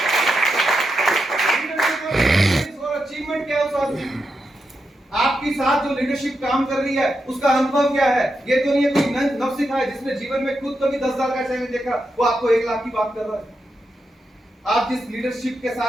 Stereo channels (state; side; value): normal; both; correlation 0.86